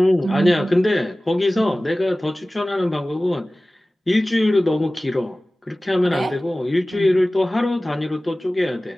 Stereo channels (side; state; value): both; normal; correlation 0.97